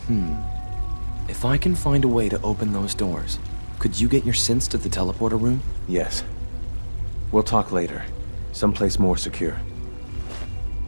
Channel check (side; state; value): both; inverted; correlation -1.00